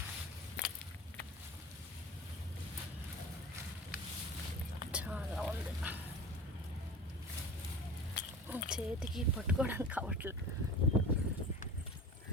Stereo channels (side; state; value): both; normal; correlation 0.36